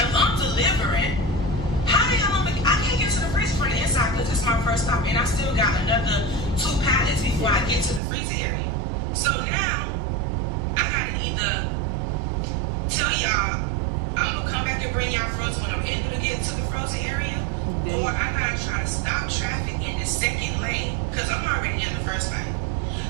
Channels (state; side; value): drops out; left; at 8.0 s